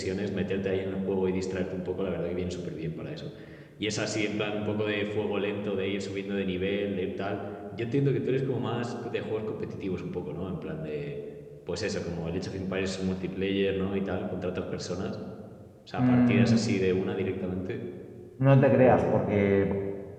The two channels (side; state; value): both; identical; correlation 1.00